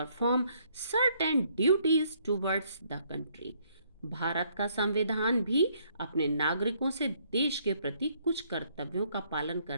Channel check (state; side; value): inverted; both; correlation -0.68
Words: certain duties towards the country. Bharat का संविधान भी अपने नागरिकों से देश के प्रति कुछ कर्तव्यों का पालन